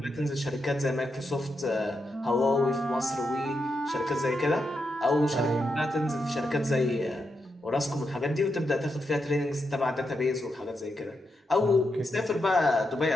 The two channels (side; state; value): both; normal; correlation 0.84